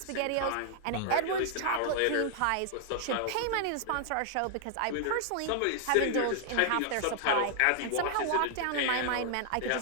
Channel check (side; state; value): both; different; correlation 0.00